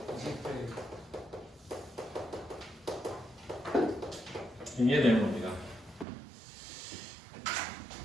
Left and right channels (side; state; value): left; drops out; at 6.1 s